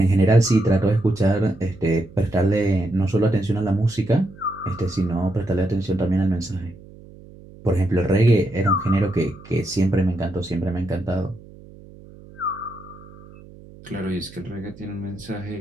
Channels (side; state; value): right; noise; hum, 20 dB below the sound